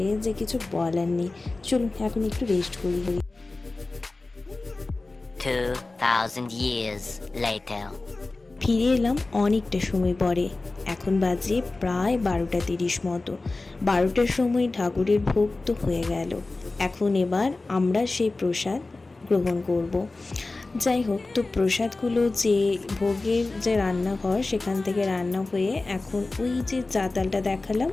যে কিছু বলার নেই। চলুন এখন একটু রেস্ট করি। 2000 years later. ফিরে এলাম অনেকটা সময় পরে। এখন বাজে প্রায় 12:30 মতো। 12টার সময় ঠাকুরের ভোগ তো হয়ে গেল। এখন এবার আমরা সেই প্রসাদ গ্রহণ করব। যাই হোক, তো প্রসাদগুলো যে ভোগের যে রান্নাঘর সেখান থেকে রান্না হয়ে এখন ওই যে চাতালটা দেখালাম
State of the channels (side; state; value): right; quieter; 3.3 dB